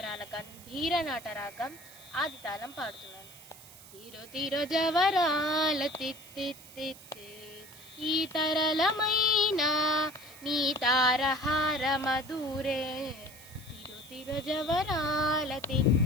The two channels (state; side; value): noise; right; hiss, 19 dB below the sound